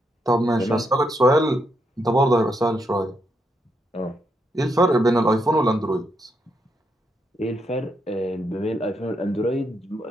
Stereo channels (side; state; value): both; normal; correlation 0.79